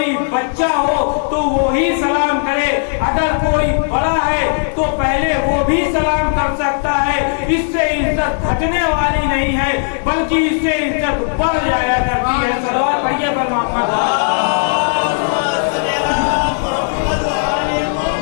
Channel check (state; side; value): silent; right; digital silence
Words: بچہ ہو تو وہی سلام کرے، اگر کوئی بڑا ہے تو پہلے وہ بھی سلام کر سکتا ہے، اس سے عزت گھٹنے والی نہیں ہے بلکہ اس سے عزت بڑھ جایا کرتی ہے۔ صلوات پڑھیے پر محمد۔